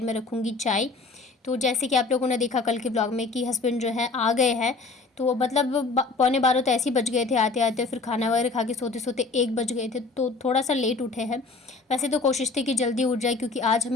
में रखूँगी चाय। तो जैसे कि आप लोगों ने देखा कल के ब्लॉग में कि हस्बैंड जो है आ गए हैं। तो मतलब पौने 12 तो ऐसे ही बज गए थे आते आते, फिर खाना वगैरह खा के सोते सोते 1 बज गए थे। तो थोड़ा सा लेट उठे हैं। वैसे तो कोशिश थी कि जल्दी उठ जाए, क्योंकि आज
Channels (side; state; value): right; quieter; 3.9 dB